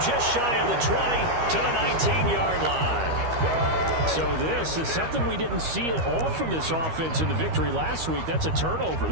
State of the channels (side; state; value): left; late; 13 ms